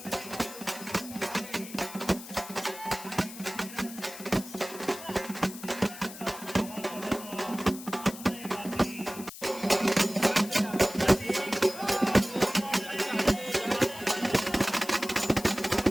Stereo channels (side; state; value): left; noise; hiss, 14 dB below the sound